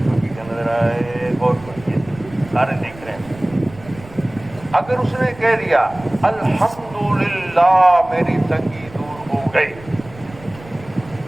کی نظر آئے، اور سارے دیکھ رہے ہیں۔ اگر اس نے کہہ دیا الحمدللہ میری تنگی دور ہو گئی،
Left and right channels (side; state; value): right; noise; rumble, 20 dB below the sound